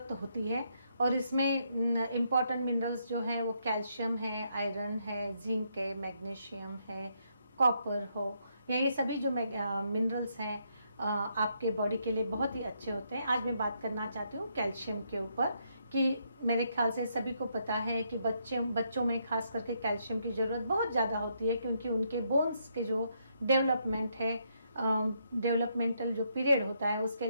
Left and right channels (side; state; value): both; inverted; correlation -0.76